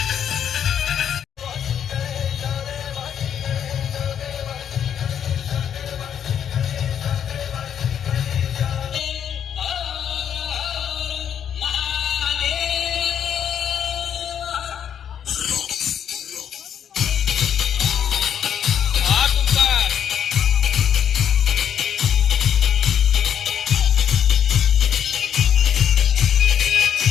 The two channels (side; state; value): right; quieter; 8.9 dB